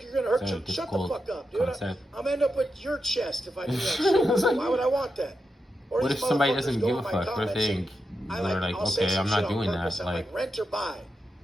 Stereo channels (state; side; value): normal; both; correlation 0.88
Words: you're going to hurt is that you. a Shut the difficult fuck up, dude. concept? I'm end up with your chest if I do that shit. Why would I want that? Or What these if somebody motherfuckers doesn't go give in a my fuck? What if they comments and they're like, I'll say okay, some I'm shit not on doing purpose. that. I'm Like, rent or buy.